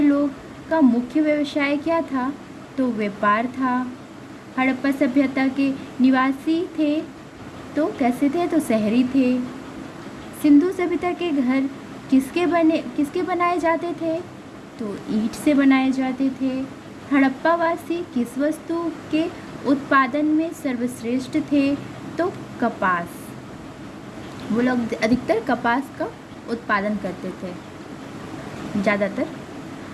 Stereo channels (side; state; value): both; identical; correlation 1.00